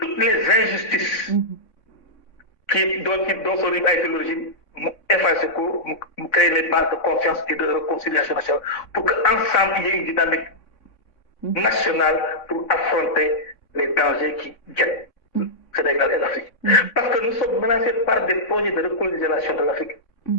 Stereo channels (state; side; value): late; right; 3.6 ms